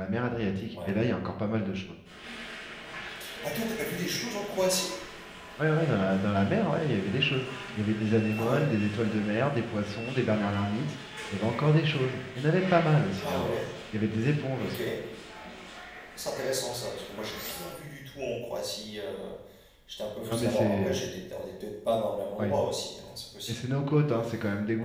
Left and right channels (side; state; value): both; identical; correlation 1.00